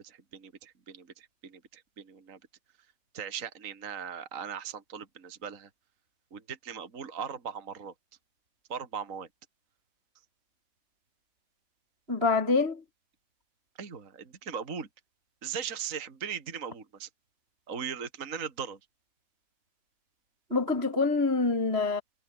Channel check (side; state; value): left; late; 3.9 ms